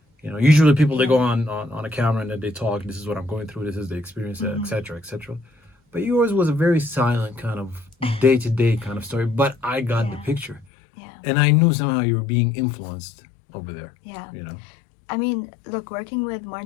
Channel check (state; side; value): drops out; right; at 10.7 s